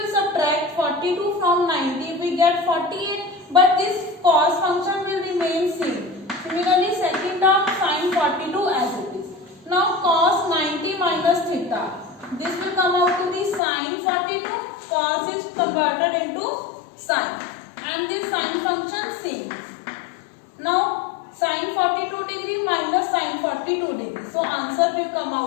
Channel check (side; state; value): right; drops out; at 13.6 s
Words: subtract 42 from 90, we get 48. But this cos function will remain same. Similarly, second term sine 42 as it is. Now cos 90 minus theta. This will come out to be sine 42. Cos is converted into sine. And this sine function same. Now sine 42 degree minus sine 42 degree. So answer will come